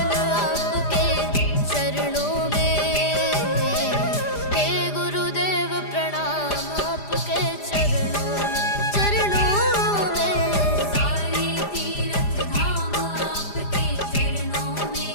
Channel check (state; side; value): late; right; 4.9 ms